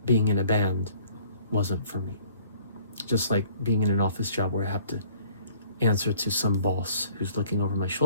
being in a band wasn't for me. Just like being in an office job where I have to answer to some boss who's looking over my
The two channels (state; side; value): inverted; both; correlation -0.55